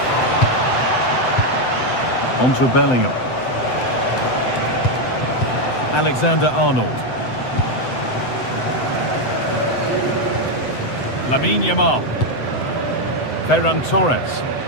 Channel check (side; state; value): right; late; 7.9 ms